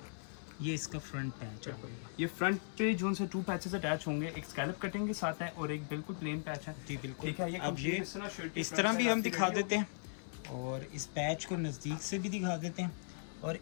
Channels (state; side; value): silent; right; digital silence